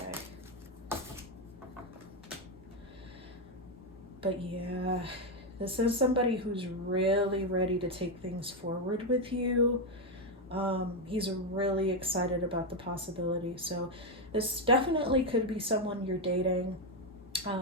But yeah, this is somebody who's really ready to take things forward with you. He's really excited about the possibility. So this definitely could be someone you're dating,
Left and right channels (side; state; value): both; normal; correlation 0.06